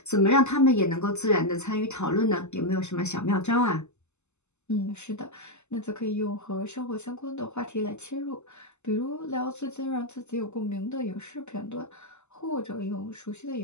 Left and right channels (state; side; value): late; right; 0.83 ms